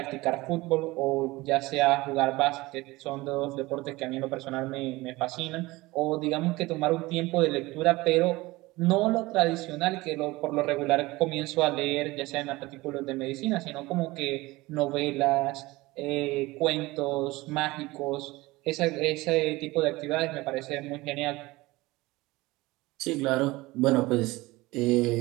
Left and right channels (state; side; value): quieter; left; 20.7 dB